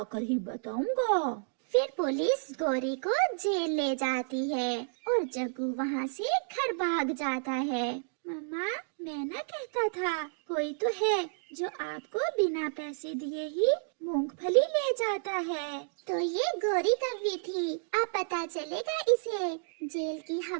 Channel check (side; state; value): left; silent; digital silence